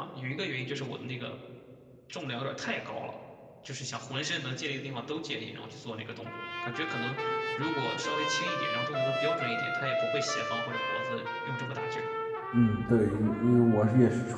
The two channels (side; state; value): both; identical; correlation 1.00